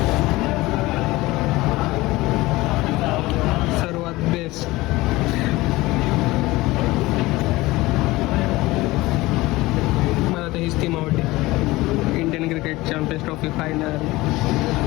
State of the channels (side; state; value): right; quieter; 19.7 dB